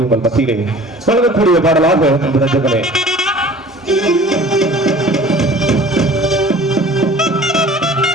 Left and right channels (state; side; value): normal; both; correlation 0.46